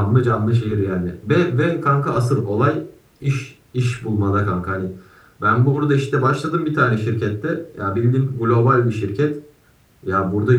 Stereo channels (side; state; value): both; identical; correlation 1.00